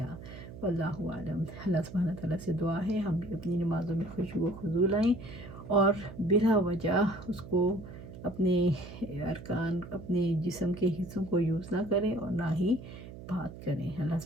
واللہ اعلم۔ اللہ سبحانہ تعالیٰ سے دعا ہے ہم بھی اپنی نمازوں میں خشوع و خضوع لائیں اور بلا وجہ اس کو اپنے ارکان، اپنے جسم کے حصوں کو یوز نہ کریں اور نہ ہی بات کریں۔ اللہ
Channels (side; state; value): right; noise; hum, 14 dB below the sound